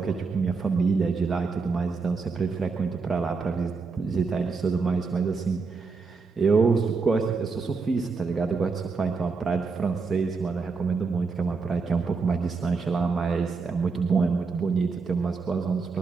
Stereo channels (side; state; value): left; quieter; 4.7 dB